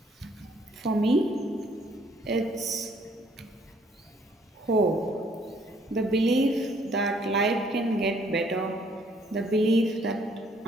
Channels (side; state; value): both; normal; correlation 0.64